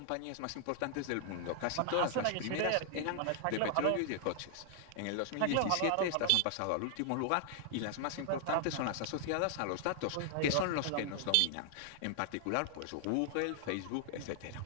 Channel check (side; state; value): both; different; correlation 0.00